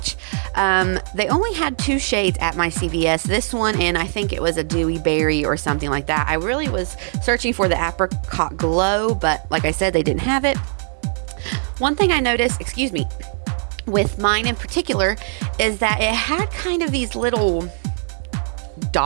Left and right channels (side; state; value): left; silent; digital silence